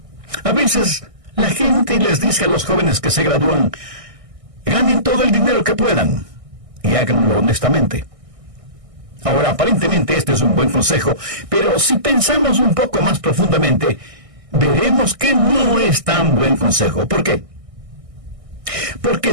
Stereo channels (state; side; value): late; left; 1.6 ms